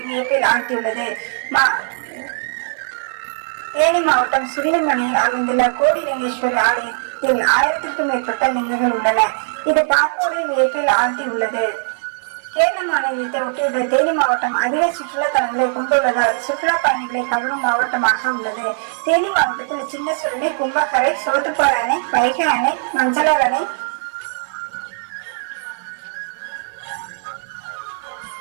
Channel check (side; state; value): left; silent; 56 dB below the other